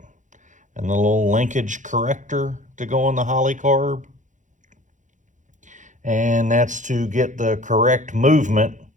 and the little linkage corrector to go on the Holley carb. And that's to get the correct movement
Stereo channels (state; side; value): late; left; 0.36 ms